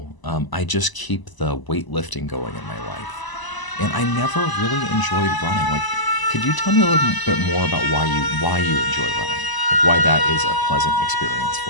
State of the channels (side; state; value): right; late; 1.0 ms